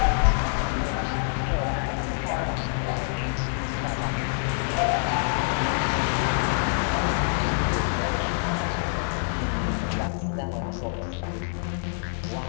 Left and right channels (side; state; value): right; silent; digital silence